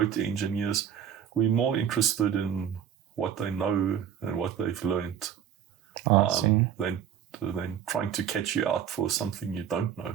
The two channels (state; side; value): quieter; left; 9.0 dB